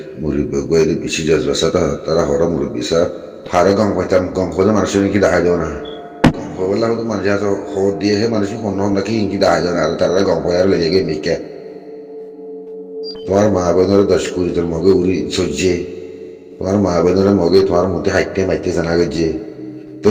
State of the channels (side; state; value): both; identical; correlation 1.00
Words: murid gue itu bisi jas basa tara hora murid bisa. Hara gong koda manusia ini kita aja na. Gong koda lah itu manusia so hod dia he manusia kono lagi ini kita aja na. Tara gong koda le jage mikir. Tuar mah bener das kuri ter moge uri sojje. Tuar mah bener moge tuar muti haitte maitte sana gajje. तो